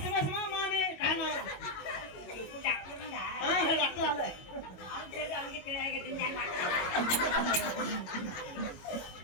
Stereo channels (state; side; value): late; right; 22 ms